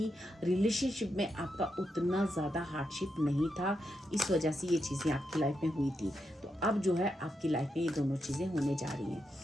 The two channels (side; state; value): both; normal; correlation 0.84